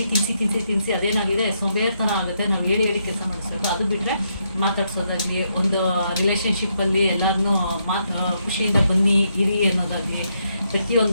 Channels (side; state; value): both; inverted; correlation -0.78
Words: ತಿನ್ಸಿ ಅದೇನಾಗಿದೆ ಸೋಂಬೇರಿ ಥರ ಆಗುತ್ತೆ. ನಾವು ಹೇಳಿ ಕೆಲಸ ಮಾಡಿಸ್ಬೇಕು. ಅದು ಬಿಟ್ಟರೆ ಮಾತಾಡ್ಸೋದಾಗಲಿ, ಒಂದು ರಿಲೇಷನ್ಶಿಪ್ಪಲ್ಲಿ ಎಲ್ಲರನ್ನೂ ಖುಷಿಯಿಂದ ಬನ್ನಿ ಇರಿ ಅನ್ನೋದಾಗಲಿ